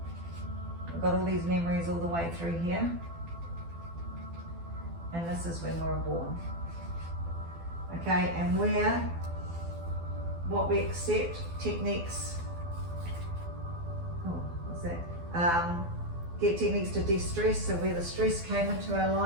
We've got all these memories all the way through here. And this is when we were born. Okay, and what we accept, techniques, what's that? Get techniques to de-stress, so where the stress came into our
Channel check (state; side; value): late; left; 12 ms